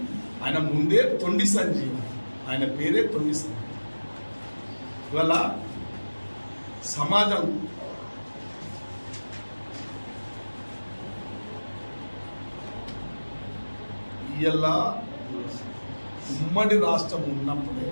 ఆయన ముందే తొండి సంజయ్, ఆయన పేరే తొండి సంజయ్. ఇవాళ సమాజం ఇలా ఉమ్మడి రాష్ట్రం ఉన్నప్పుడే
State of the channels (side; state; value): both; inverted; correlation -1.00